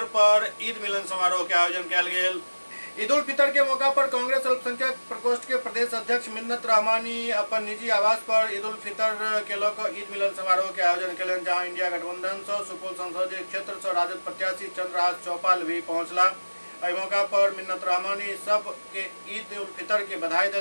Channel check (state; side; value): inverted; both; correlation -1.00